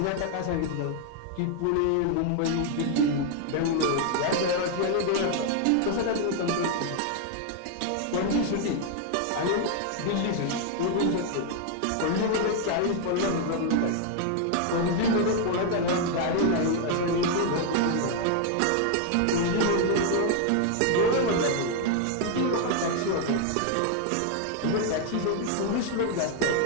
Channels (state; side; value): different; both; correlation 0.00